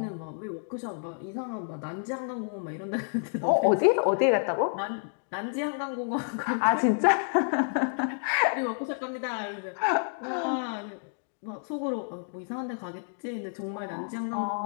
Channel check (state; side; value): silent; right; digital silence